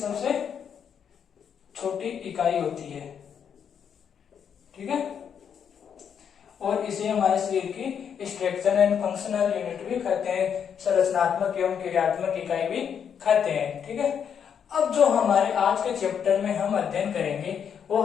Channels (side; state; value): right; quieter; 7.8 dB